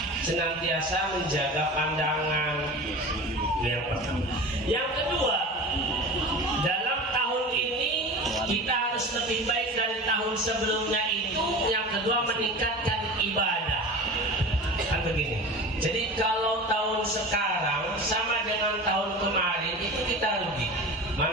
senantiasa menjaga pandangan. Yang pertama. Yang kedua, dalam tahun ini kita harus lebih baik dari tahun sebelumnya itu. Yang kedua, meningkatkan ibadah. Kan begini. Jadi kalau tahun sekarang sama dengan tahun kemarin itu kita rugi.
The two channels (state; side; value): normal; both; correlation 0.33